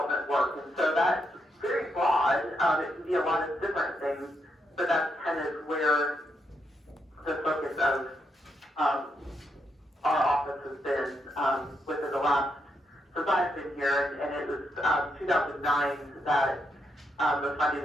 work. And so that's very broad. It can be a lot of different things, but that's kind of where the focus of our office has been within the last, since I've been here, and it was 2009 that the funding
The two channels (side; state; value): both; normal; correlation 0.80